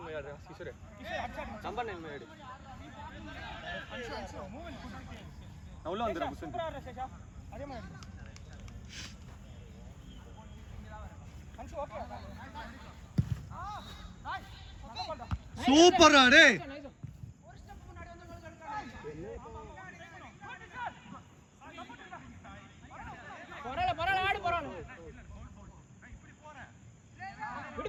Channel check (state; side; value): identical; both; correlation 1.00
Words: में यार किशोर नंबर 9 में यार अंशु मूव इन ना उल्ला अंदर कुछ अरे मैं अंशु ओके சூப்பர் அடே ஒரு ஸ்டெப் முன்னாடி வந்து பரவாயில்ல ஆடு பரவாயில்ல இப்படி